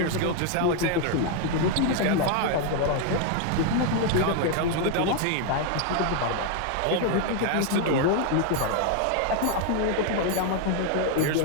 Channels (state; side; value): different; both; correlation 0.00